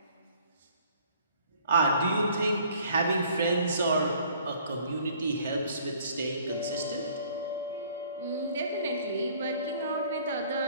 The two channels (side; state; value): both; inverted; correlation -0.56